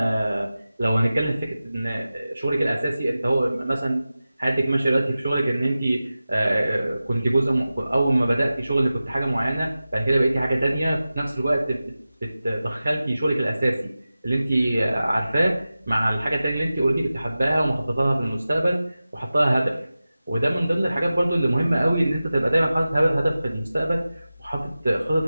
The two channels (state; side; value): inverted; both; correlation -0.95